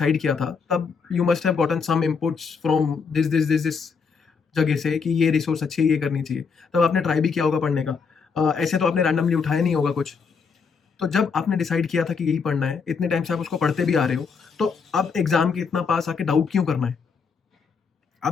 किया था तब you must have gotten some inputs from this जगह से कि ये रिसोर्स अच्छी है, ये करनी चाहिए. तब आपने ट्राई भी किया होगा पढ़ने का. ऐसे तो आपने रैंडमली उठाया नहीं होगा कुछ. तो जब आपने डिसाइड किया था कि यही पढ़ना है, इतने टाइम से आप उसको पढ़ते भी आ रहे हो, तो अब एग्जाम के इतना पास आके डाउट क्यों करना है?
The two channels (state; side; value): quieter; right; 5.5 dB